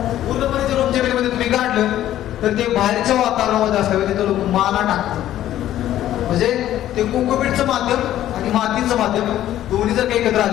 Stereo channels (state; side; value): quieter; right; 12.7 dB